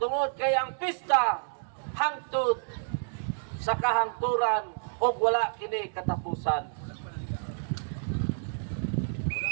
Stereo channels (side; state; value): left; silent; digital silence